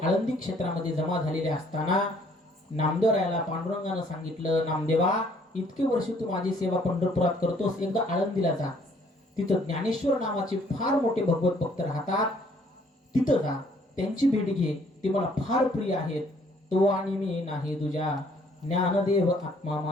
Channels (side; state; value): both; normal; correlation 0.62